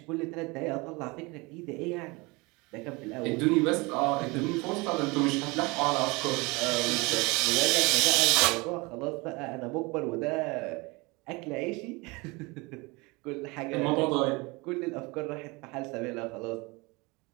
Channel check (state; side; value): quieter; left; 25.5 dB